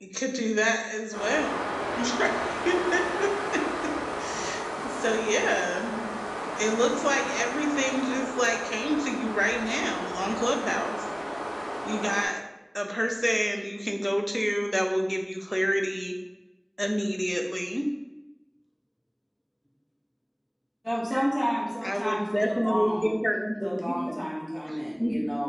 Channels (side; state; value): both; identical; correlation 1.00